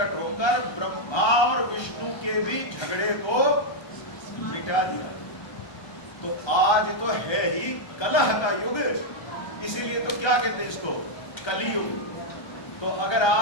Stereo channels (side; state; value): right; late; 1.3 ms